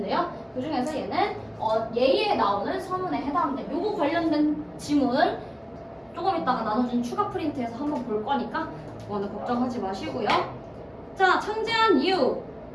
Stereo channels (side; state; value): both; identical; correlation 1.00